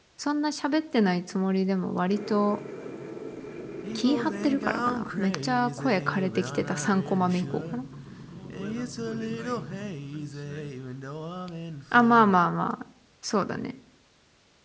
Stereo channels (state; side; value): identical; both; correlation 1.00